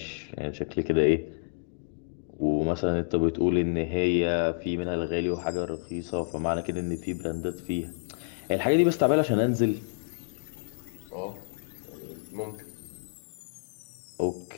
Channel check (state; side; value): silent; right; digital silence